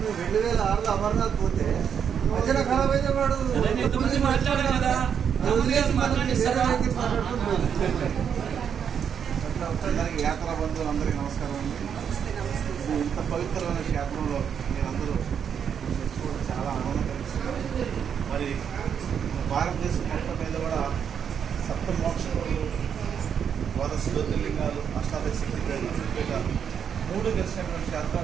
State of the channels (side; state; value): left; quieter; 7.7 dB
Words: 2006లో అమర్నాథ్ పోతే మధ్యన ఖరాబ్ అయితే వాడు అందరికీ యాత్రా బంధువులందరికీ నమస్కారం అండి. ఇంత పవిత్రమైన క్షేత్రంలో మీరందరూ తెచ్చుకోవడం చాలా ఆనందం కలిగిస్తుంది. మరి భారతదేశం మొత్తం మీద కూడా సప్త మోక్షములు, ద్వాదశ జ్యోతిర్లింగాలు, అష్టాదశ శక్తిపీఠాలు 3 గెలిచినటువంటి